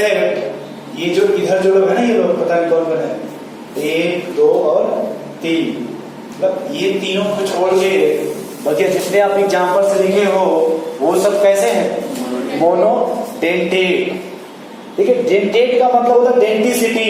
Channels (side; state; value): both; identical; correlation 1.00